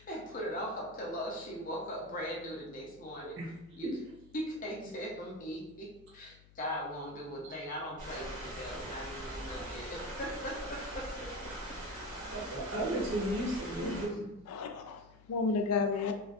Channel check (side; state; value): left; noise; hum, 23 dB below the sound